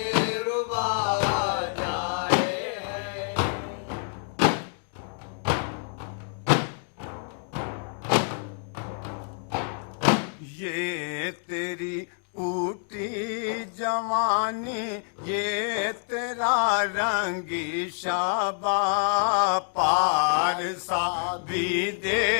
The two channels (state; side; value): silent; right; 55 dB below the other